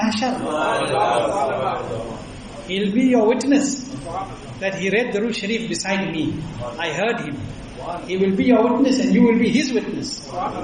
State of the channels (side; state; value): both; identical; correlation 1.00